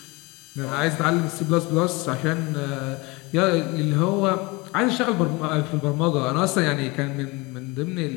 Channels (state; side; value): quieter; right; 25.2 dB